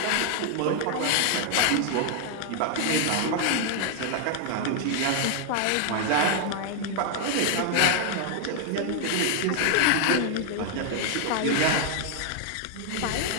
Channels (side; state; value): both; different; correlation 0.00